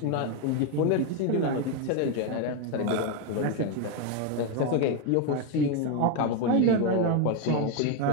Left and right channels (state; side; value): different; both; correlation 0.02